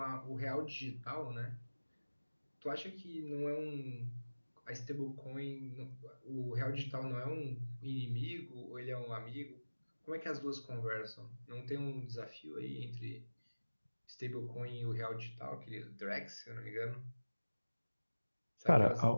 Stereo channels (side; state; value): both; inverted; correlation -1.00